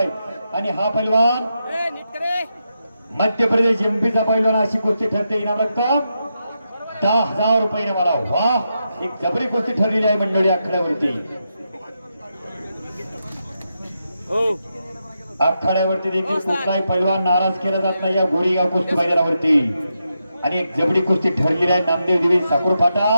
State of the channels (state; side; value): inverted; both; correlation -0.85